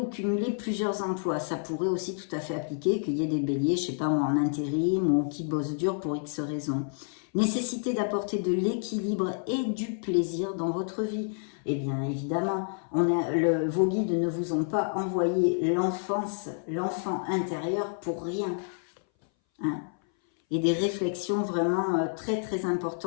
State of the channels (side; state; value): right; silent; 59 dB below the other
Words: cumuler plusieurs emplois, ça pourrait aussi tout à fait appliquer qu'il y ait des béliers, je sais pas moi, en intérim ou qui bossent dur pour X raisons. Nécessité d'apporter de l'équilibre et du plaisir dans votre vie. Eh bien évidemment, vos guides ne vous ont pas envoyé l'enfant intérieur pour rien. Hein. Et des réflexions vraiment très très